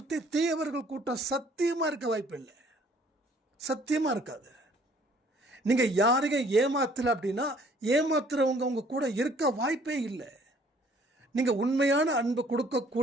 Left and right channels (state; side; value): normal; both; correlation 0.58